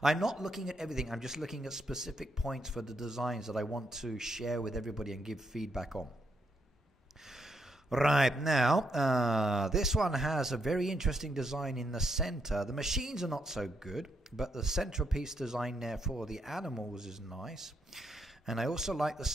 I'm not looking at everything. I'm just looking at specific points for the designs that I want to share with everybody and give feedback on. Right, now, this one has a very interesting design in the center. The machines are not so good, but the centerpiece design there for the animals is nice. And I also like the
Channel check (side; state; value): both; normal; correlation 0.78